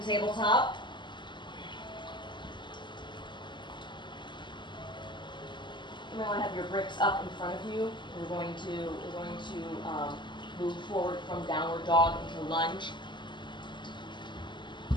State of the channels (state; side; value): late; right; 0.22 ms